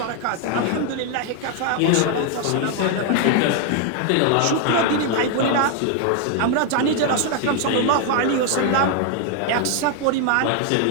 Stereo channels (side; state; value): both; different; correlation 0.00